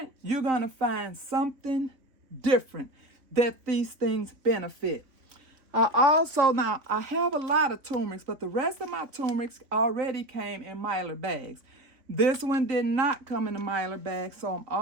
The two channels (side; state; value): left; late; 3.3 ms